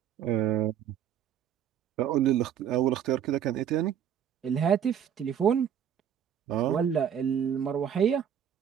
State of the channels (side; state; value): left; quieter; 9.1 dB